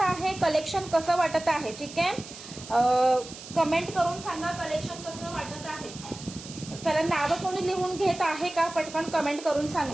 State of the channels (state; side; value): noise; right; hiss, 14 dB below the sound